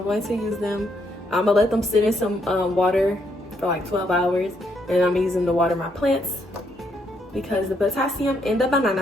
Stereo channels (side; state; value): both; normal; correlation 0.75